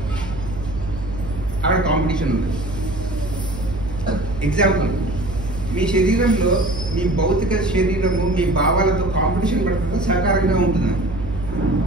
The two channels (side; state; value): right; noise; hum, 11 dB below the sound